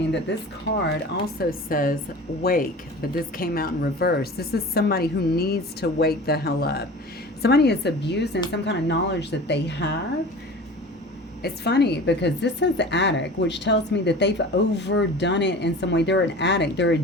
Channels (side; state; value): both; normal; correlation 0.38